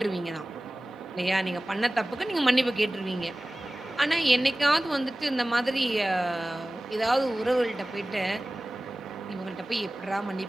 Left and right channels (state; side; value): normal; both; correlation 0.97